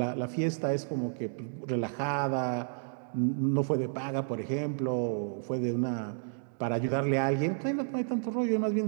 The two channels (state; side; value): silent; left; digital silence